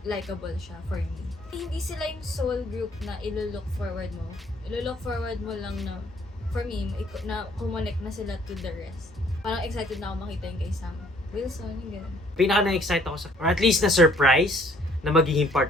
likable siya for me. Hindi sila yung sole group na ilo-look forward mo. Ilo-look forward mo lang na, for me, na kumonek na sila to the rest. Parang excited na ako makita yung kay Sam Wilson, yung gano'n. Pinaka na-excite ako or at least na-surprise na magiging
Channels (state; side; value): normal; both; correlation 0.61